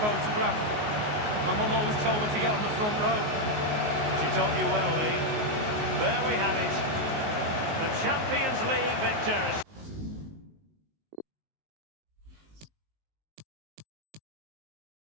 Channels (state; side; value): late; left; 19 ms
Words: My mum always told me to get on the front row. She taught you well, Lee. There we have it. The Champions League victors.